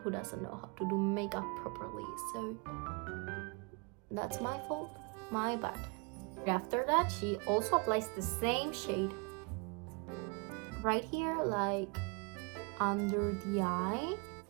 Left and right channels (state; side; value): quieter; left; 32.6 dB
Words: doesn't know how to do makeup properly, so that's my fault, my bad. After that, she also applies the same shade right here, like under the eye.